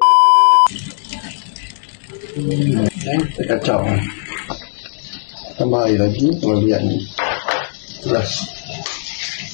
Kita kacau. Tambah air lagi, kemudian ni. Teras.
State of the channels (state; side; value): silent; right; digital silence